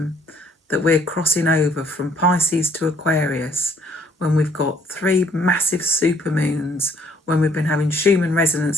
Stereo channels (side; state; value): both; normal; correlation 0.62